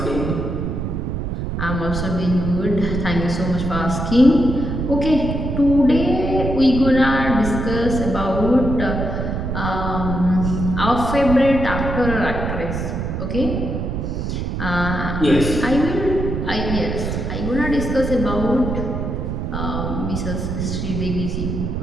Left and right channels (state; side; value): noise; right; rumble, 3 dB below the sound